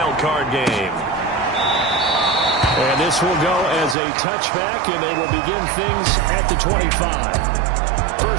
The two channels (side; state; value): left; drops out; at 4.0 s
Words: game. And this will go as a touchback, and they will begin things at the 25.